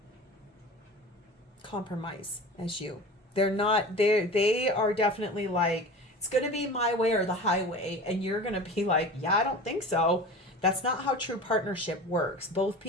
compromise as you. They are definitely like, it's going to be my way or the highway. And you're going to be like, yeah, I don't think so. That's not how true partnership works. Both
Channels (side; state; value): both; normal; correlation 0.35